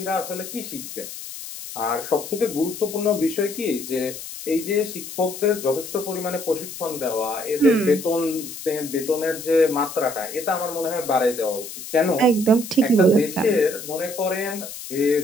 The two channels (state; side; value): noise; left; hiss, 11 dB below the sound